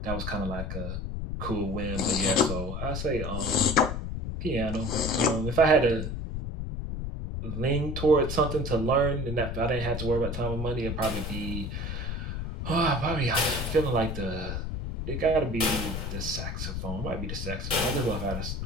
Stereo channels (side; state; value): left; noise; rumble, 4 dB below the sound